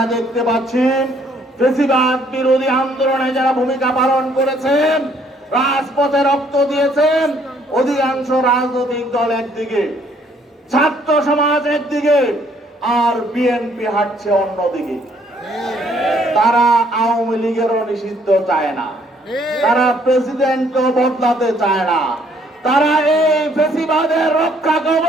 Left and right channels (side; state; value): both; normal; correlation 0.65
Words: দেখতে পাচ্ছি ফ্যাসিবাদ বিরোধী আন্দোলনে যারা ভূমিকা পালন করেছেন, রাজপথে রক্ত দিয়েছেন, অধিকাংশ রাজনৈতিক দল একদিকে, ছাত্র সমাজ একদিকে, আর বিএনপি হাঁটছে অন্যদিকে। তারা আওয়ামী লীগেরও নিষিদ্ধ চায় না, তারা প্রেসিডেন্টও বদলাতে চায় না, তারা এই ফ্যাসিবাদের রক্ষা